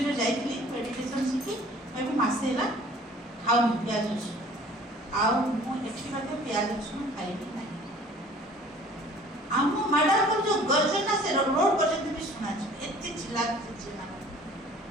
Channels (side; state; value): both; normal; correlation 0.51